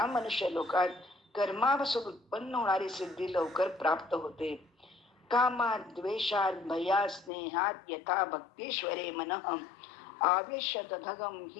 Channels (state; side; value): drops out; right; at 7.3 s